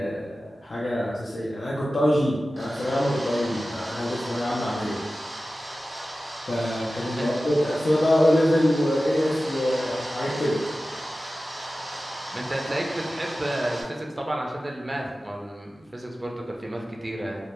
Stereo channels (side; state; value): both; normal; correlation 0.95